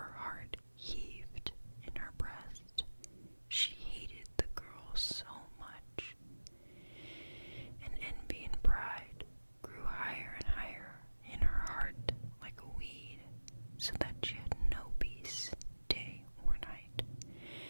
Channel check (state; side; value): inverted; both; correlation -1.00